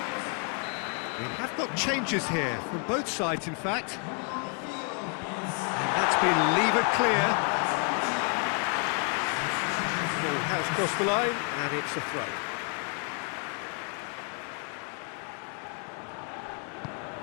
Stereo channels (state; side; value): quieter; right; 40.0 dB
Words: We have got changes here, from both sides, in fact. And that's been levered clear. Ball has crossed the line, and it's a throw.